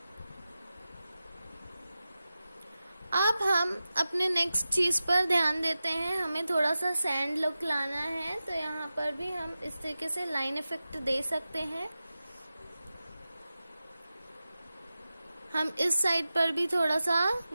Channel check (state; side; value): inverted; both; correlation -0.94